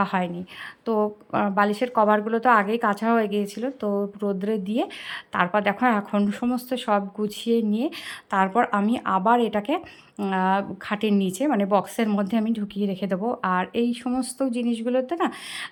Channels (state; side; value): identical; both; correlation 1.00